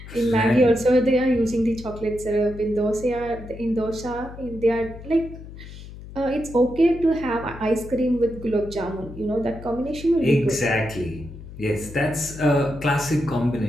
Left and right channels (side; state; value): left; noise; hum, 14 dB below the sound